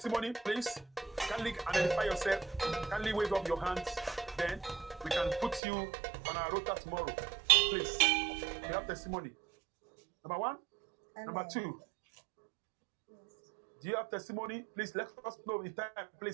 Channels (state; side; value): drops out; left; at 5.6 s